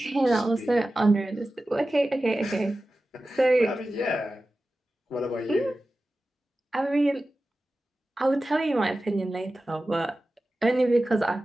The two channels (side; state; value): both; normal; correlation 0.95